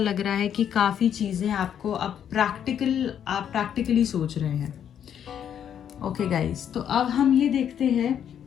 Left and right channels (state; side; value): quieter; right; 9.1 dB